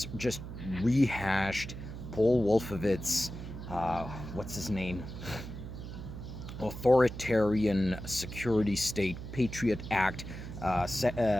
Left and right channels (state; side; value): noise; right; hum, 9 dB below the sound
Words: just rehashed Paul Wolfowitz, what's his name? Authoritarian security state, Patriot Act,